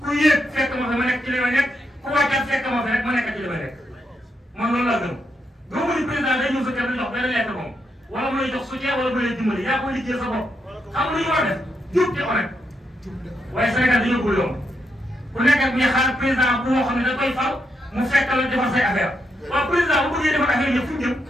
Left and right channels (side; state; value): both; normal; correlation 0.81